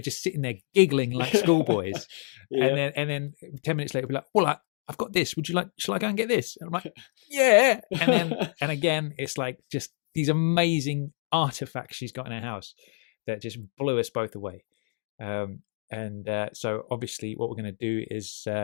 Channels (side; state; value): right; silent; digital silence